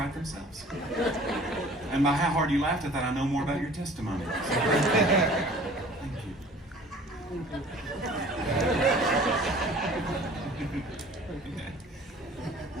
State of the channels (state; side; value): normal; both; correlation 0.48